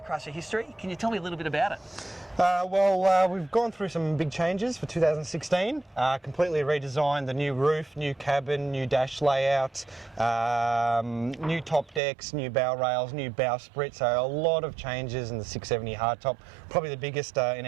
history. Can you tell me a little bit about it? We've gone through some big changes for 2016. Completely redesigned the new roof, new cabin, new dash layout, new top decks, new bow rails, new bowsprit. So a lot of changes in the 670 hardtop. Probably the biggest in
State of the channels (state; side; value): drops out; left; at 12.0 s